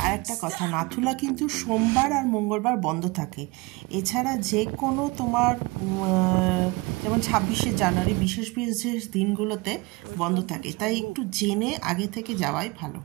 আর একটা কথা, নাথুলা কিন্তু সোমবার আর মঙ্গলবার বন্ধ থাকে। এছাড়া যে কোনো তোমার যেমন 26শে জানুয়ারি বিশেষ বিশেষ দিনগুলোতে বন্ধ থাকে, তাই একটু জেনে আগে থেকে যাওয়াই ভালো।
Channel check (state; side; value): quieter; left; 24.8 dB